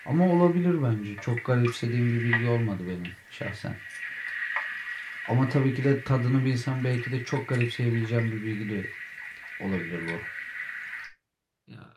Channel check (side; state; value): both; identical; correlation 1.00